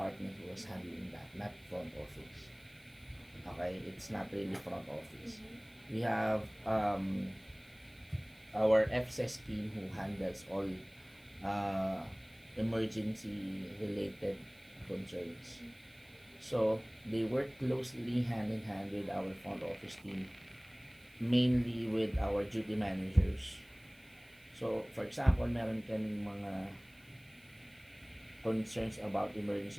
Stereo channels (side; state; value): right; noise; hiss, 28 dB below the sound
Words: who was handling that, not front office. Okay, it's not really front office. We have our FSS team who handles all emergency related concerns. So they work closely hand in hand with our front office team, mainly with our duty managers. So for example, meron kaming mga concerns about